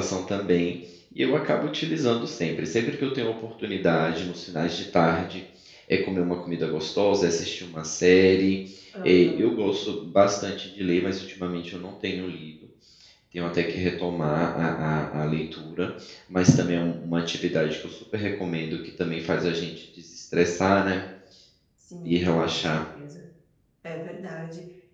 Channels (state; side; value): identical; both; correlation 1.00